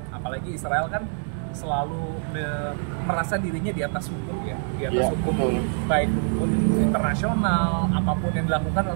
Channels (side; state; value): left; silent; 62 dB below the other